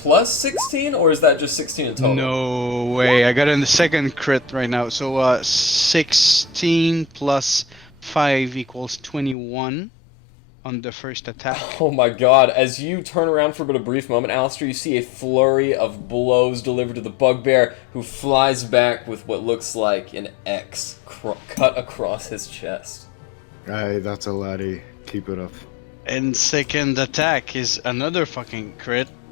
16, or is that just 16 in total? No way, I got in the second crit right now. So 16 plus 5 equals 21 on the first attack. Oh my god, as you turn around for but a brief moment, Alistair, you see a flurry of blows delivered to the bugbear, who flies back with what looks like an X cut across his chest. Aye, that's a laddie. Keep it up. And second attack is another fucking crit.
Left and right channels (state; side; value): drops out; right; at 9.3 s